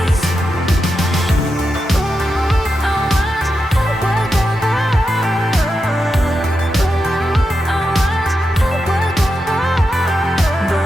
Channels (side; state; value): both; normal; correlation 0.87